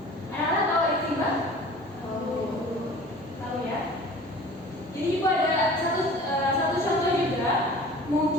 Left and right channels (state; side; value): normal; both; correlation 0.44